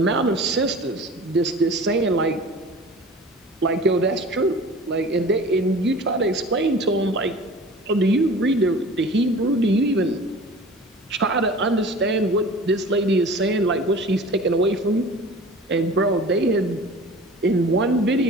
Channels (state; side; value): normal; both; correlation 0.41